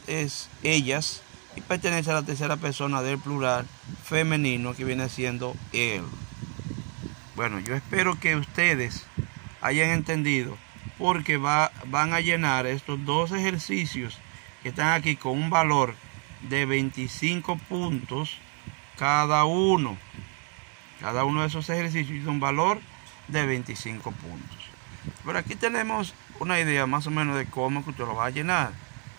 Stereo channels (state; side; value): quieter; left; 39.5 dB